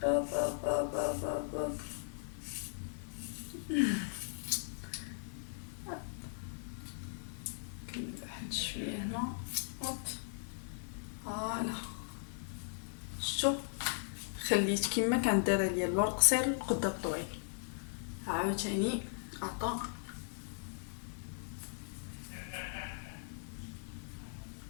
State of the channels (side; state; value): right; silent; digital silence